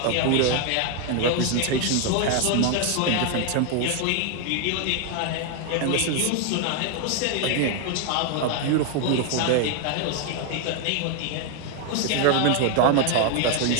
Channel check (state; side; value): different; both; correlation 0.01